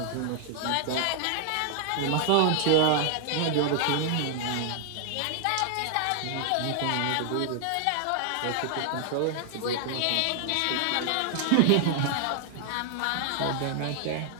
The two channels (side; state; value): both; different; correlation 0.00